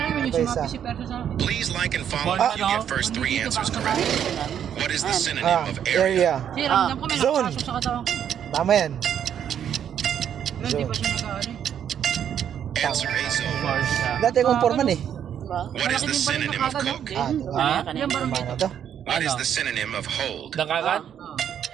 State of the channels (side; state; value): left; quieter; 9.2 dB